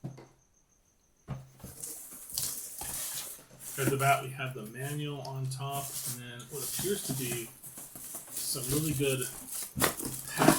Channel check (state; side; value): identical; both; correlation 1.00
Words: At the bat, we have the manual on top, and then what appears to be some really good